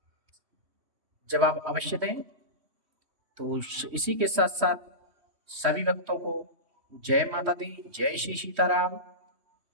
जवाब अवश्य दें। तो इसी के साथ साथ सभी भक्तों को जय माता दी, जय श्री सीताराम,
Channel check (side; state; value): left; late; 3.1 ms